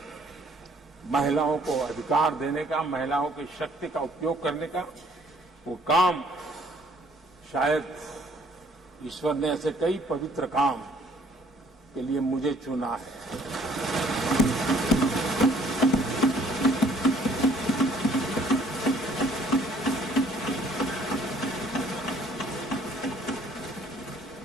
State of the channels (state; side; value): normal; both; correlation 0.60